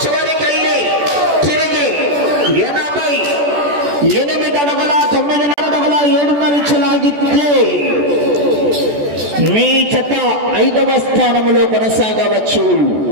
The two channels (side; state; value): left; late; 14 ms